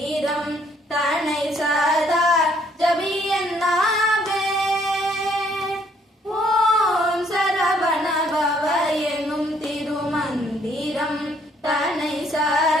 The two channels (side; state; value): both; normal; correlation 0.65